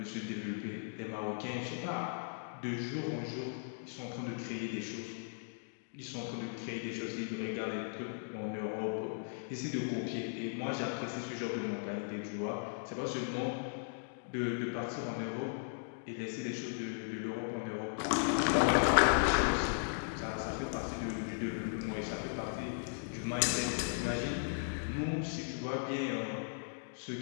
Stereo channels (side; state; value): right; silent; digital silence